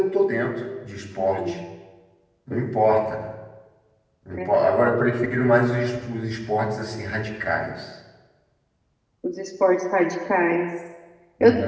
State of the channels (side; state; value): both; identical; correlation 1.00